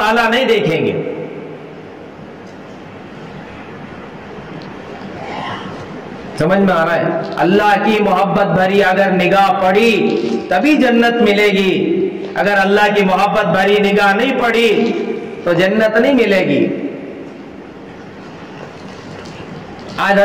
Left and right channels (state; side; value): identical; both; correlation 1.00